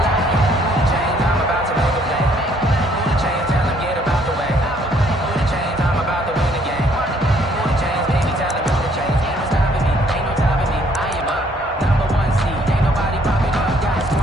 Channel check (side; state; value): both; normal; correlation 0.64